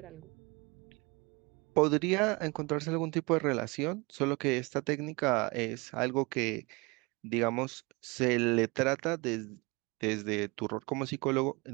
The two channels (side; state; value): left; quieter; 26.7 dB